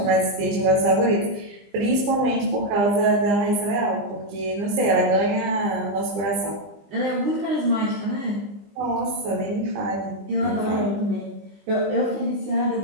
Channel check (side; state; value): left; late; 20 ms